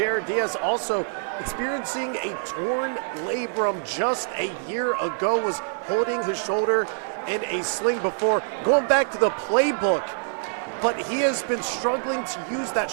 Diaz, also experiencing a torn labrum just a year ago, was holding his shoulder in a sling before going back to the playbook. But he has been struggling to use that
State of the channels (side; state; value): left; silent; 62 dB below the other